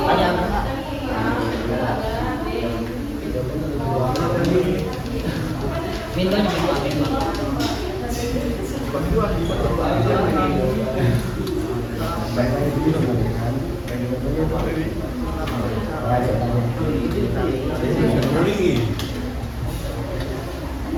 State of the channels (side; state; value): both; identical; correlation 1.00